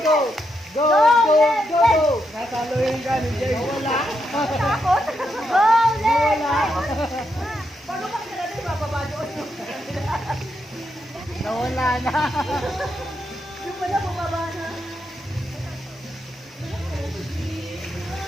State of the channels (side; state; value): both; normal; correlation 0.82